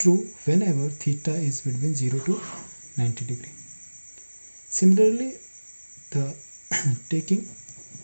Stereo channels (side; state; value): both; inverted; correlation -1.00